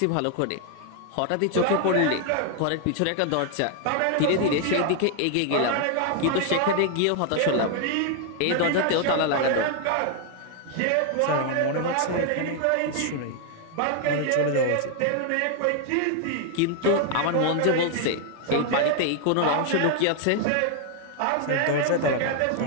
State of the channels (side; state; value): both; different; correlation 0.00